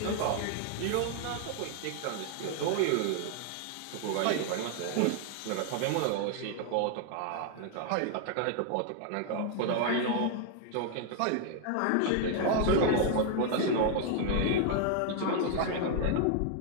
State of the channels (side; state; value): both; different; correlation 0.00